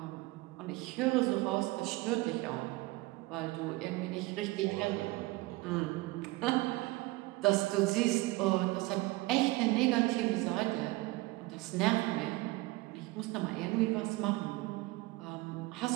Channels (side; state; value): left; quieter; 21.3 dB